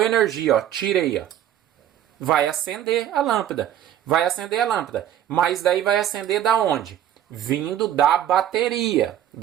energia, ó, tirei, ó. Vai acender a lâmpada. Vai acender a lâmpada. Mas daí vai acender da onde? Vindo da bateria.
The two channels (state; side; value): quieter; left; 11.1 dB